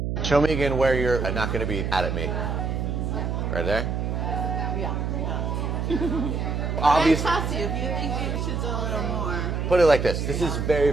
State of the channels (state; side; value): noise; right; hum, 1 dB below the sound